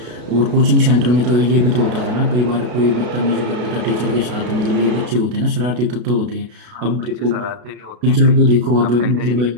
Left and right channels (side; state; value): left; late; 33 ms